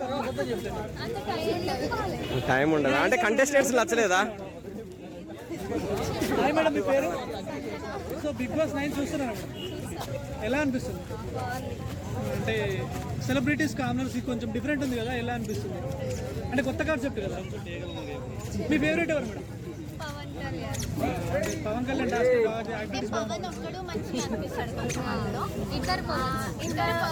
టైం ఉండదా అంటే కంటెస్టెంట్స్ నచ్చలేదా? మేడం మీ పేరు? సో బిగ్ బాస్ 9 చూస్తున్నారా ఎలా అనిపిస్తుంది? అంటే సెలబ్రిటీస్ కామనర్స్ కొంచెం డిఫరెంట్ ఉంది కదా, ఎలా అనిపిస్తుంది? అంటే కొత్త కాన్సెప్ట్ కదా. మీ ఫేవరెట్ ఎవరు మేడం? పవన్ కళ్యాణ్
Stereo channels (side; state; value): both; identical; correlation 1.00